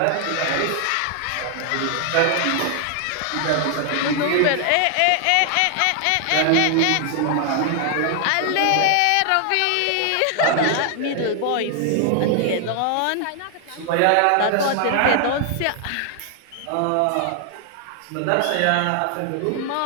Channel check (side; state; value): both; different; correlation 0.00